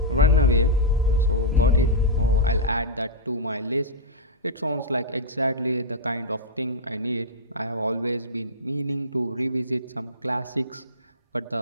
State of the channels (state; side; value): normal; both; correlation -0.10